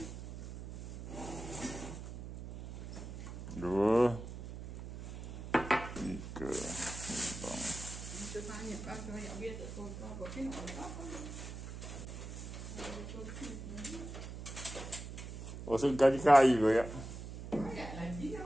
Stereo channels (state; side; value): noise; right; hum, 9 dB below the sound